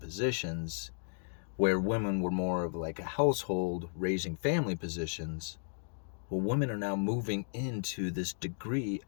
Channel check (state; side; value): silent; right; digital silence